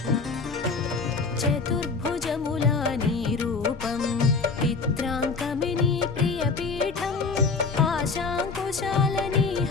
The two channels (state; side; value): quieter; right; 4.5 dB